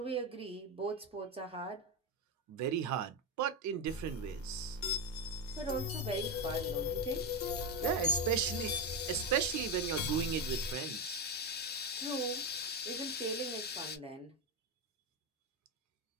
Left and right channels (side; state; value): both; normal; correlation 0.11